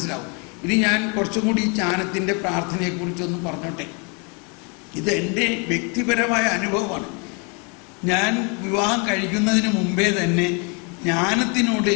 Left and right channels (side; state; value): right; quieter; 34.1 dB